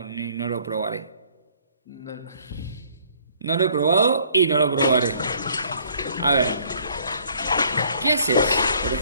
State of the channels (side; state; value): both; inverted; correlation -0.60